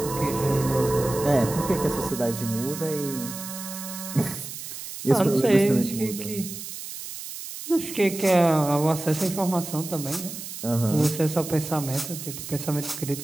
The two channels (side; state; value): right; noise; hiss, 10 dB below the sound